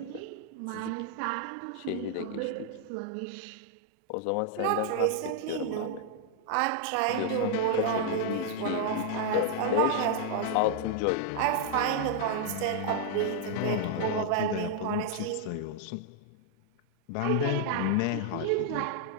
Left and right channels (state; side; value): different; both; correlation -0.01